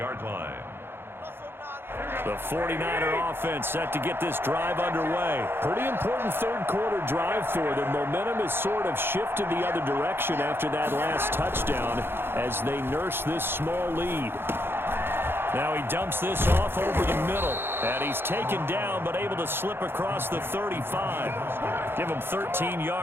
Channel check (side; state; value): left; late; 0.11 ms